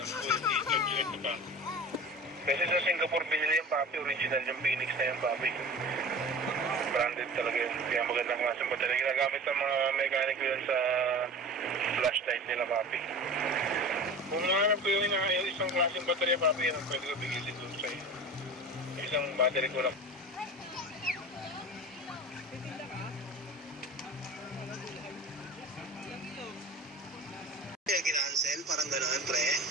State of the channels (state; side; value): normal; both; correlation 0.36